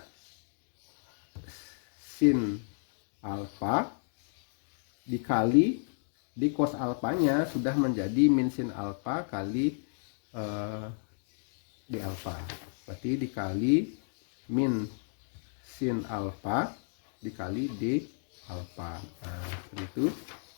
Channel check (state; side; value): silent; right; digital silence